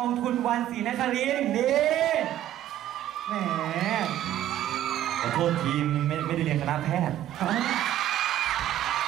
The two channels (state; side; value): quieter; left; 12.5 dB